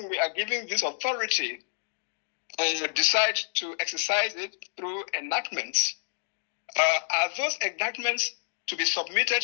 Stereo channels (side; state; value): right; silent; digital silence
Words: we are giving this authority decide to exercise it through enactments, are those enactments to be submitted